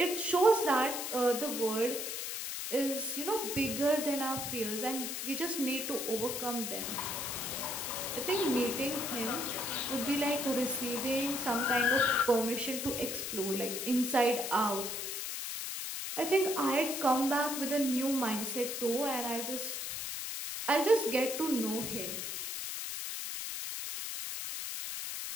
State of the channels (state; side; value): noise; left; hiss, 4 dB below the sound